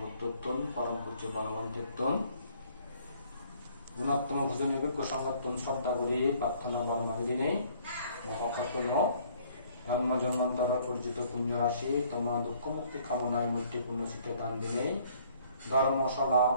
বুদ্ধত্তন পরম পূজ্য বনবন্তিত্তন গুণাত্তম ভোজন যোগ্য সংগঠন শ্রদ্ধা করি প্রার্থনা বর্মাবিধি নেই মহাকর্তব্য জন্ম জন্মান্তর পরিচিত পুণ্য রাশি তোমার দুঃখ মুক্তি কামনায় মৃত্যু পুণ্য শিক্ষা দান দিনে ধর্মশালা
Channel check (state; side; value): inverted; both; correlation -0.60